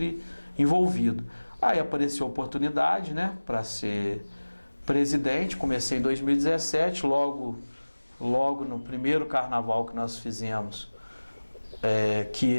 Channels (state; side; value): inverted; both; correlation -1.00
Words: envolvido. Aí apareceu a oportunidade, né, para ser presidente. Comecei em 2017, logo no primeiro carnaval que nós fizemos,